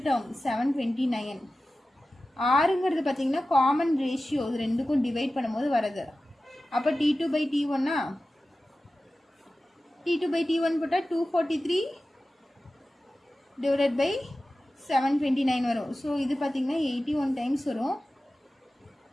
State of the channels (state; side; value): normal; both; correlation 0.95